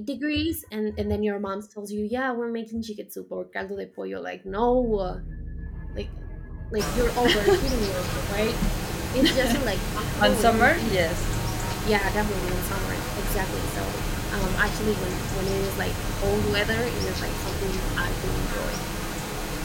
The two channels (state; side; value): identical; both; correlation 1.00